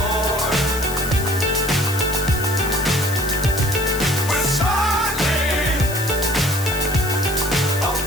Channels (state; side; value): noise; left; hiss, 10 dB below the sound